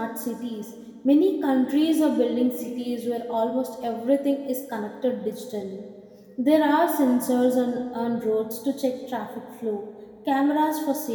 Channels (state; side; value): identical; both; correlation 1.00